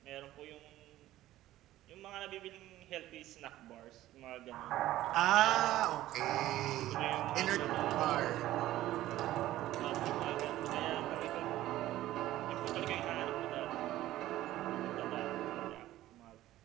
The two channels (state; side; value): quieter; left; 14.8 dB